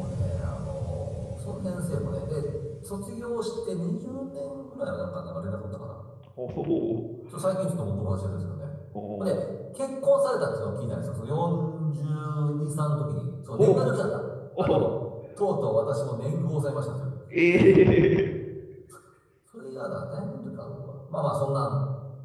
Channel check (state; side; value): identical; both; correlation 1.00